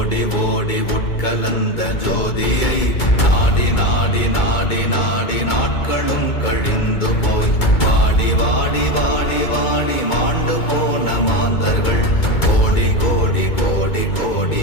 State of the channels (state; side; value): late; right; 2.2 ms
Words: ஓடி உட்கலந்த ஜோதியை நாடி நாடி நாடி நாடி நாட்களும் கழிந்து போய் வாடி வாடி வாடி வாடி மாண்டு போன மாந்தர்கள் கோடி கோடி கோடி கோடி